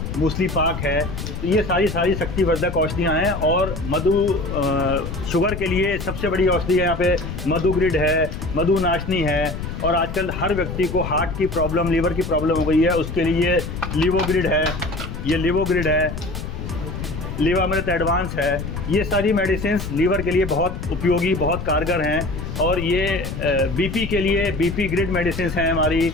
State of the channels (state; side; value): noise; left; rumble, 6 dB below the sound